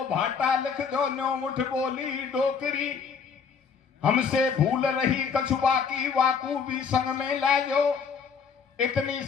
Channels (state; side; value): quieter; right; 6.1 dB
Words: भाटा लिख दो, 9 मुठ बोली डोकरी, हमसे भूल रही कछुआ की वाकू भी संग में लाजो, इतनी